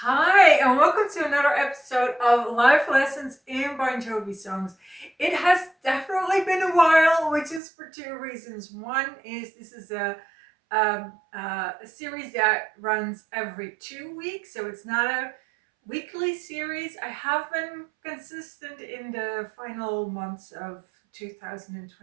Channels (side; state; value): left; drops out; at 7.6 s